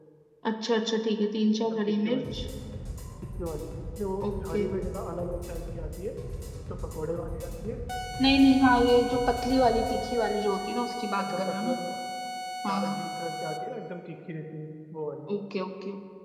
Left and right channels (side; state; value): both; identical; correlation 1.00